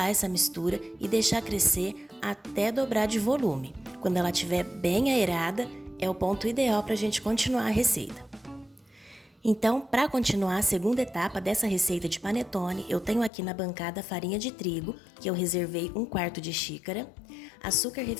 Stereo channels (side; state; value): right; drops out; at 13.3 s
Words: essa mistura e deixar crescer até dobrar de volume. Quando ela estiver bem aerada, é o ponto ideal para a gente continuar a receita. Então, para continuar a segunda etapa dessa receita de panetone, eu tenho aqui na bancada a farinha de trigo, que eu reservei 1/4 de xícara, açúcar